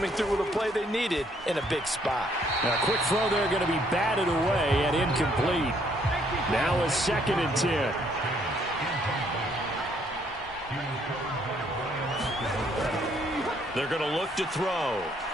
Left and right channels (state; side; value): normal; both; correlation 0.67